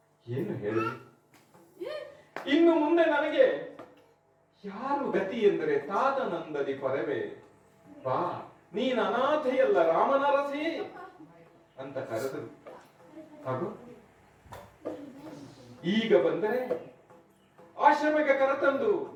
ಏನು ಹೇಳಲಿ? ಇನ್ನು ಮುಂದೆ ನನಗೆ ಯಾರು ಗತಿ ಎಂದರೆ ತಾತನಂದದಿ ಪರವೇ ಬಾ ನೀನ್ ಅನಾಥೆಯಲ್ಲ ರಾಮನರಸಿ ಅಂತ ಕರೆದರು. ಹಾಗೂ ಈಗ ಬಂದರೆ ಆಶ್ರಮಕ್ಕೆ ಕರೆತಂದು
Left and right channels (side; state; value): both; identical; correlation 1.00